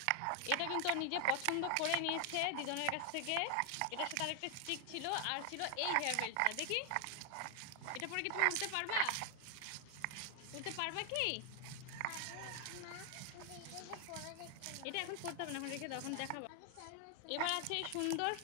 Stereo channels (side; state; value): both; different; correlation 0.00